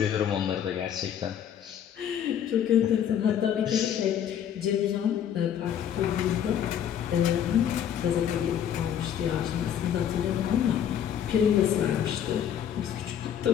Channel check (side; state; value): right; quieter; 9.3 dB